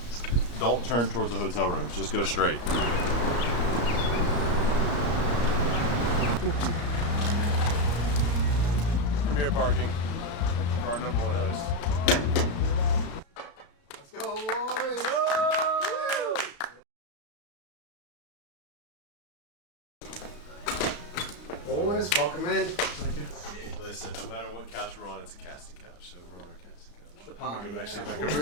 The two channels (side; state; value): right; late; 34 ms